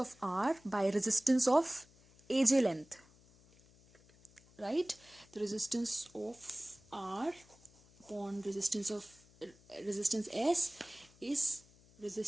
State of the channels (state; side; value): noise; left; hum, 27 dB below the sound